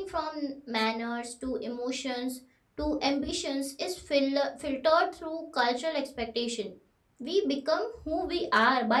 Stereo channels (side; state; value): both; identical; correlation 1.00